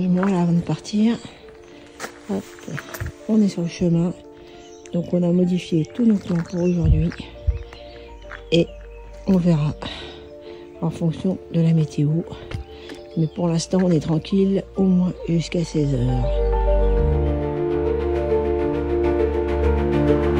là avant de partir. Hop, on est sur le chemin. Donc on a modifié tous nos plans pour aujourd'hui. Et on verra en fonction de la météo. Mais pour l'instant, on est tranquille au moins jusqu'à 16 h.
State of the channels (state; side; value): identical; both; correlation 1.00